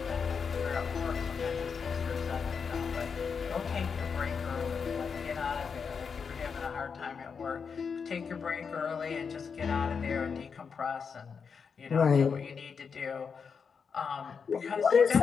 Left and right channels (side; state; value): right; quieter; 5.9 dB